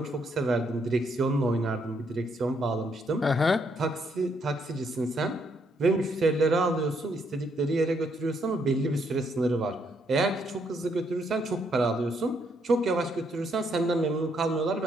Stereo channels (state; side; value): normal; both; correlation 0.73